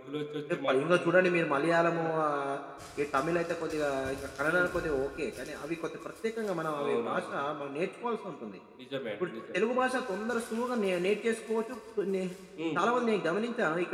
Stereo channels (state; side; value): identical; both; correlation 1.00